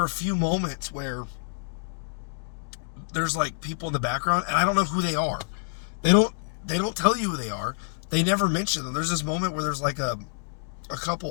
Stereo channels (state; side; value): silent; right; digital silence